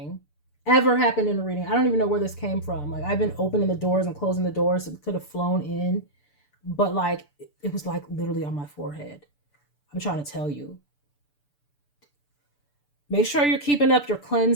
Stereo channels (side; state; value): right; late; 6.9 ms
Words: Ever happened in a reading. I don't even know where this came from. Like, I've been opening the doors and closing the doors, so it could have flown in. But like, it was like literally on my forehead. I'm trying to tell you. Make sure you're keeping up your